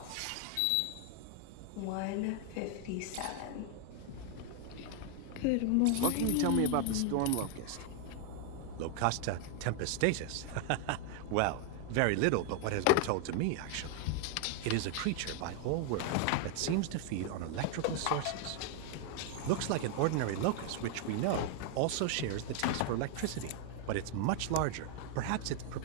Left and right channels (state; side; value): different; both; correlation 0.00